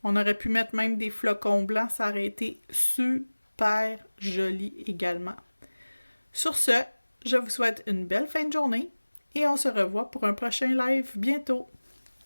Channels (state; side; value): inverted; both; correlation -1.00